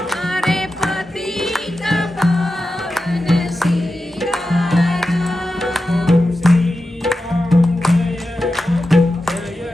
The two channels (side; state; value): both; normal; correlation 0.91